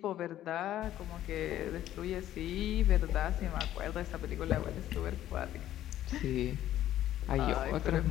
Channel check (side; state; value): right; quieter; 12.7 dB